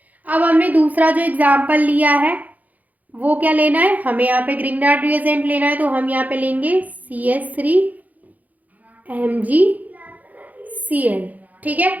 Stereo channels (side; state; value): left; late; 0.079 ms